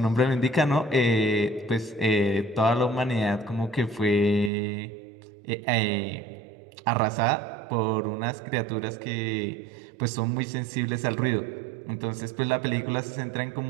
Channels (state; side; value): drops out; left; at 4.5 s